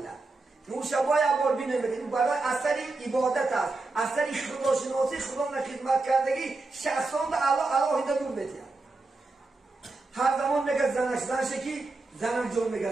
نور شبای عبار بینه میکنن برای اثری عبادت است اثری خدا شناسی خدا خدمت کردگی شخصان در الله هیده نور نتیه هر زمان میگه زنش که زنم جان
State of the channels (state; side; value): quieter; left; 3.4 dB